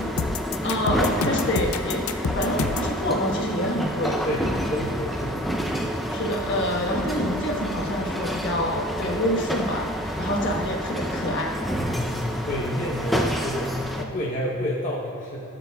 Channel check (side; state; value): both; normal; correlation 0.46